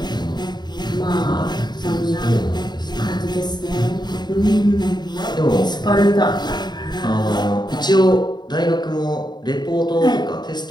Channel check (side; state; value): right; late; 0.21 ms